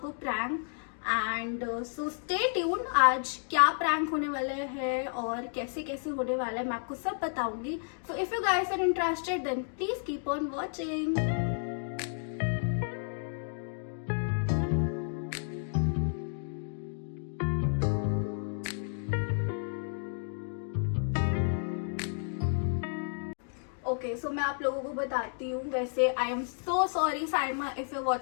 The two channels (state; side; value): silent; right; 57 dB below the other